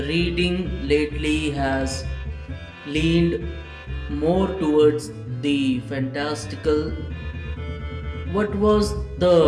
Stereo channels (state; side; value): identical; both; correlation 1.00